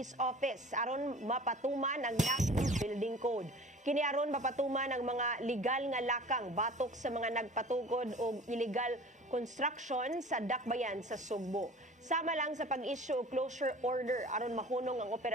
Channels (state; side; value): normal; both; correlation 0.43